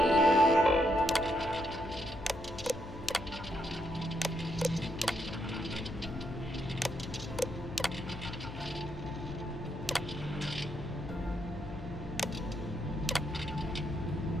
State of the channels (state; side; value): noise; left; hum, 13 dB below the sound